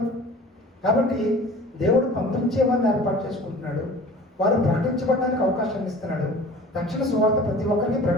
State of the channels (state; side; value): normal; both; correlation 0.43